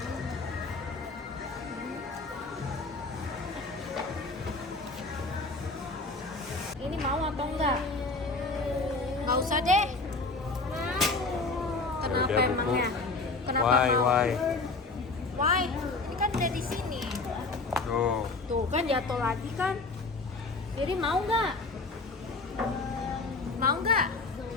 Ini mau atau enggak? Nggak usah deh. Kenapa Udah, Bu. emangnya? Kenapa Why? mau? Why? Why? Ini kan udah di sini. Tuh. Tuh kan jatuh lagi kan. Jadi mau nggak? Mau nggak?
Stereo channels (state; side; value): quieter; right; 3.6 dB